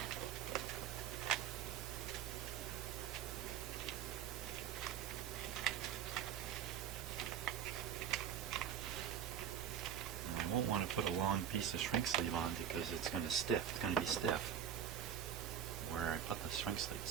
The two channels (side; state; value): left; quieter; 9.1 dB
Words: I won't want to put a long piece of shrink sleeve on because it's going to stiff. It's going to be stiff where I put the shrink sleeve,